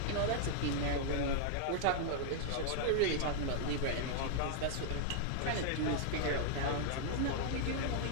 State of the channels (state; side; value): different; both; correlation -0.01